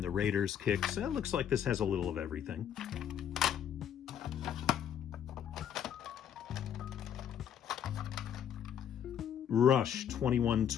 the Raiders Kicks. It looks like this has a little of everything. Rush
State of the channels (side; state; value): right; quieter; 9.1 dB